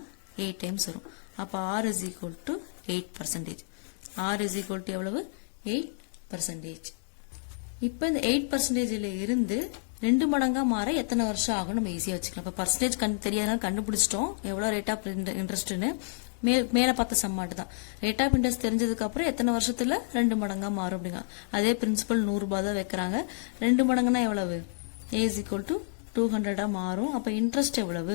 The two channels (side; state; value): right; silent; digital silence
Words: 8 டைம்ஸ் வரும். அப்ப R is equal to 8%. R is equal to எவ்வளவு? 8%. இப்ப இந்த 8%ல இருந்து 2 மடங்கா மாற எத்தனை வருஷம் ஆகும் நம்ம ஈஸியா வச்சுக்கலாம். இப்ப பர்சன்டேஜ் தெரியாதனால கண்டுபிடிச்சிட்டோம் எவ்வளவு ரேட் ஆஃப் இன்ட்ரெஸ்ட்னு. மேல பார்த்த சம்மாட்டு தான். ரேட் ஆஃப் இன்ட்ரெஸ்ட் தெரிஞ்சதுக்கு அப்புறம் எத்தனை வருஷத்துல 2 மடங்கா மாறும் அப்படிங்க. அதே பிரின்சிபல் ₹100 தான் வைக்கிறாங்க. 2 மடங்குனா எவ்வளவு? A is equal to 200 மாறும். அப்ப இன்ட்ரெஸ்ட்